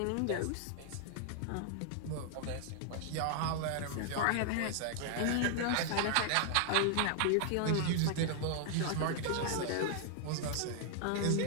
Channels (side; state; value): both; different; correlation 0.00